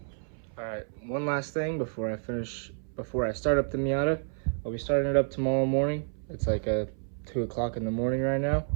All right, one last thing before I start up the Miata. I'll be starting it up tomorrow morning. It's like 2 o'clock in the morning right now.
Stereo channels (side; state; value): left; silent; 58 dB below the other